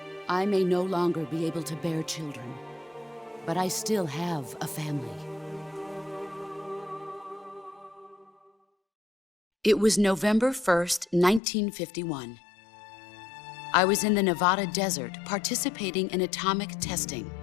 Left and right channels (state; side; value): drops out; right; at 11.4 s